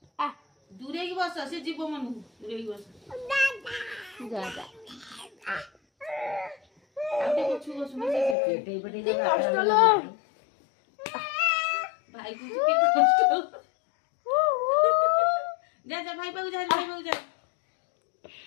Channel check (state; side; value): drops out; right; at 8.3 s